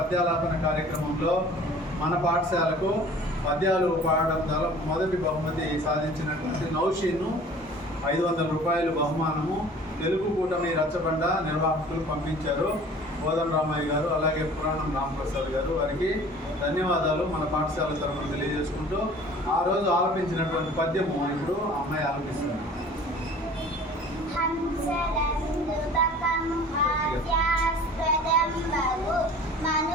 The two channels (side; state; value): both; normal; correlation 0.47